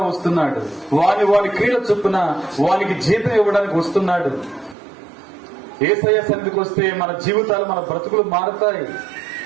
వస్తున్నాడు. వాని క్రీడ చొప్పున వానికి జీతం ఇవ్వడానికి వస్తున్నాడు. యేసయ్య సన్నిధికి వస్తే మన జీవితాలు మన బ్రతుకులు మారుతాయి,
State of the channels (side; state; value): left; drops out; at 4.8 s